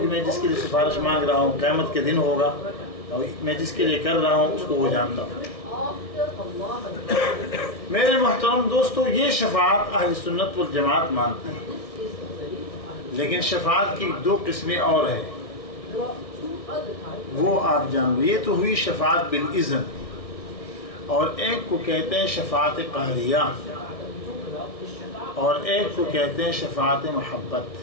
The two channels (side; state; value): right; late; 1.6 ms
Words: میں جس کے لیے سفارش مانگ رہا ہوں قیامت کے دن ہوگا، اور میں جس کے لیے کر رہا ہوں اس کو وہ جانتا ہوں۔ میرے محترم دوستو، یہ شفاعت اہل سنت والجماعت مانتے ہیں، لیکن شفاعت کی دو قسمیں اور ہیں، وہ آپ جان لو۔ یہ تو ہوئی شفاعت بالاذن، اور ایک کو کہتے ہیں شفاعت قہریہ، اور ایک کو کہتے ہیں شفاعت محبت۔